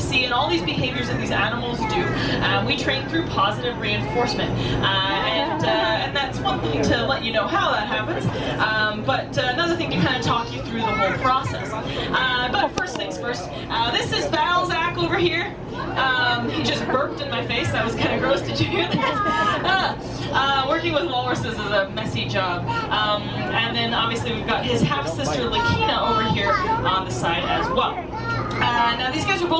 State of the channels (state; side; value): identical; both; correlation 1.00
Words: see and all these behaviors that these animals do, we train through positive reinforcement. And that's one thing to let you know how that happens, but another thing to kind of talk you through the whole process. But first things first, this is Balzac over here. He just burped in my face. That was kind of gross. Did you hear that? Working with walruses is a messy job. And then obviously we've got his half-sister Lakina over here on the side as well. Now these guys were